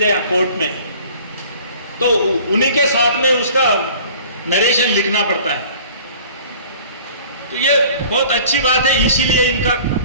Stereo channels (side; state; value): both; inverted; correlation -0.48